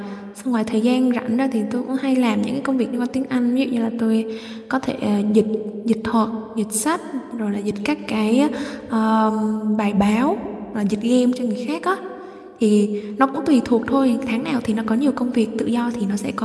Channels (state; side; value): identical; both; correlation 1.00